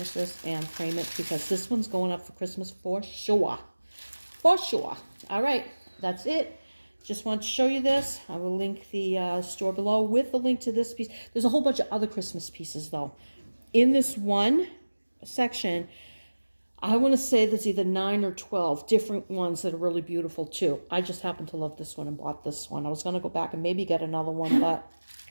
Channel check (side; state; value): both; inverted; correlation -1.00